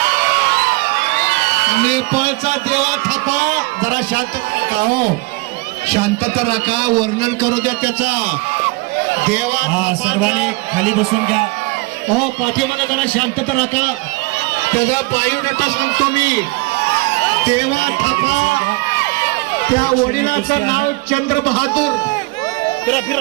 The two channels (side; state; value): left; quieter; 24.4 dB